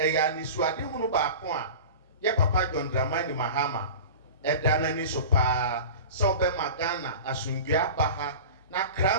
ni suade hunu ba ko a ye papa John Dramani Mahama edana ni so pa so be Ghana asundua ba ha na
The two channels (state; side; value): inverted; both; correlation -0.34